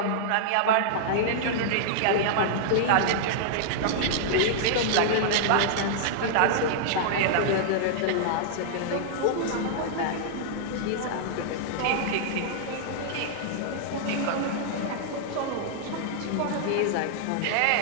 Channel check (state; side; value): different; both; correlation -0.01